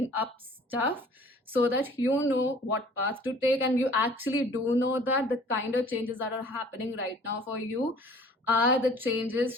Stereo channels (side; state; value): both; normal; correlation 0.51